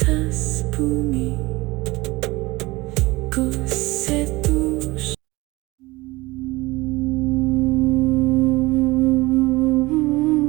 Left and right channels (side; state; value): left; quieter; 21.3 dB